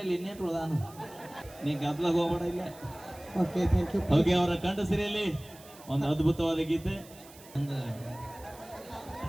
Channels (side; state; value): right; noise; hiss, 21 dB below the sound